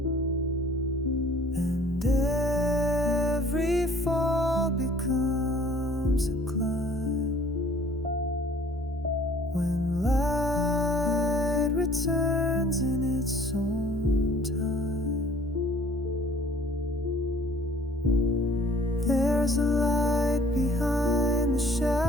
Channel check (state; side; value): normal; both; correlation 0.54